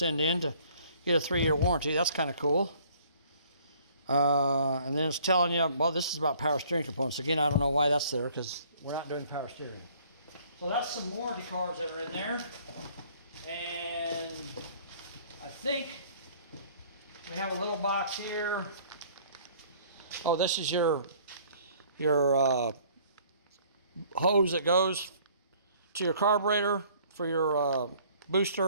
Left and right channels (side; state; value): both; inverted; correlation -0.57